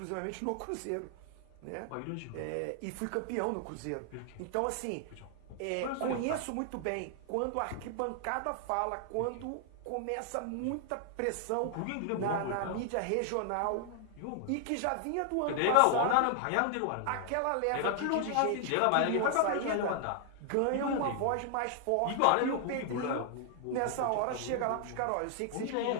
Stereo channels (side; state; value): both; different; correlation 0.00